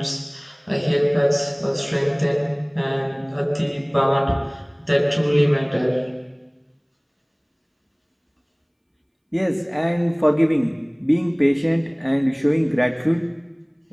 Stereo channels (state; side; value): identical; both; correlation 1.00